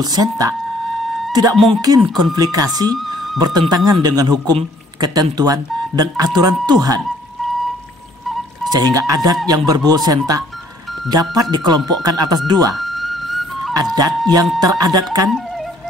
sentak tidak mungkin konflikasi bertentangan dengan hukum, ketentuan, dan aturan Tuhan. Sehingga adat yang berbuhul sentak dapat dikelompokkan atas dua: adat yang teradatkan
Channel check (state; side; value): normal; both; correlation 0.60